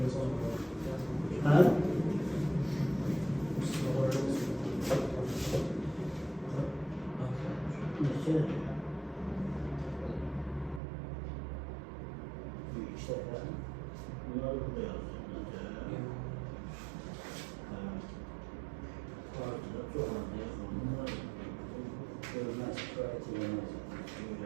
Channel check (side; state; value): left; drops out; at 10.8 s